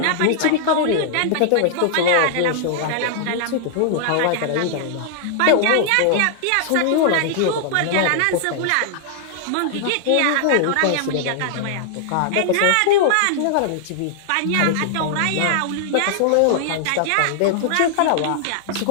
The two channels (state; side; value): different; both; correlation 0.00